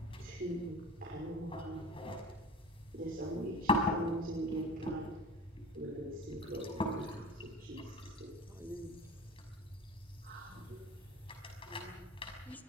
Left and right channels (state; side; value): normal; both; correlation 0.36